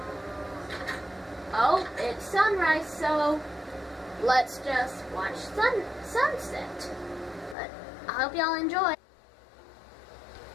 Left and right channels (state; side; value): drops out; right; at 7.6 s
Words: Oh, it's sunrise, so let's just watch sunset. But I hope y'all enjoy.